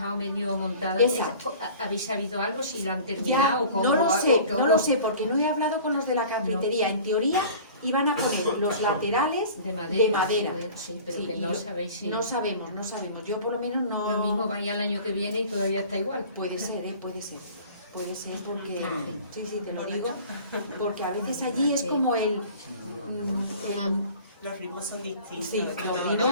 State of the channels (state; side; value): inverted; both; correlation -0.44